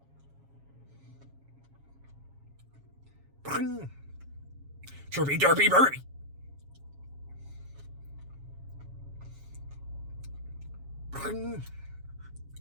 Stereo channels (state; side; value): late; left; 7.3 ms